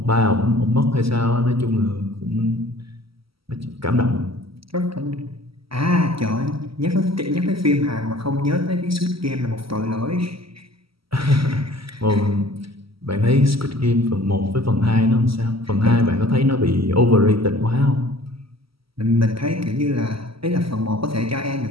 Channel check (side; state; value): left; late; 0.75 ms